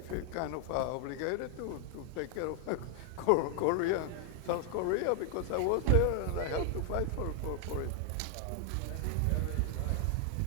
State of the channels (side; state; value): both; different; correlation 0.00